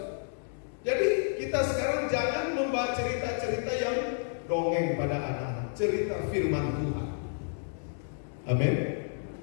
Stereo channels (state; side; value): silent; right; digital silence